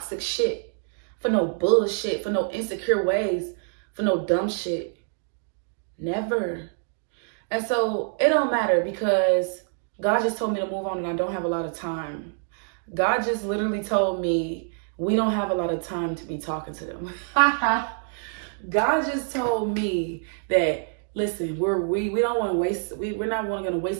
shit, for no bullshit, for no insecure ways, for no dumb shit. Never. And so it don't matter, because God just told me to move on and I don't have a lot of time. God just literally told me we don't have a lot of time to be talking to them. God just told me that, listen, we don't want to waste, we're not going to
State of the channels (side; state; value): left; silent; 61 dB below the other